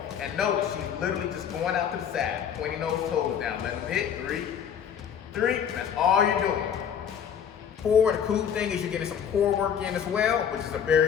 And notice, she's literally just going out to the side, pointing those toes down. Let them hit, 3, 3, and that's all you're doing. 4, the cool thing is you're getting some core work in as well, which is a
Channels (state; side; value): quieter; right; 8.1 dB